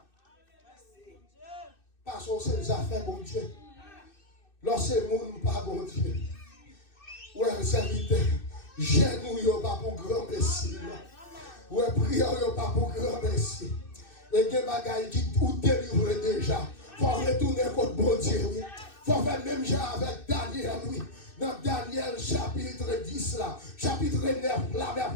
Parce que c'est les affaires, bon Dieu. Lorsque le monde pas bon Dieu. Ouais, serviteur. Genou yo pas pour grand messie. Ouais, prière yo pas pour grand messie. Et des bagailles qui tout délivré déjà. Faut retourner contre bon Dieu. Faut faire même genre avec Daniel, oui. Dans Daniel chapitre 10 là, chapitre 9 là,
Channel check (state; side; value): late; right; 2.6 ms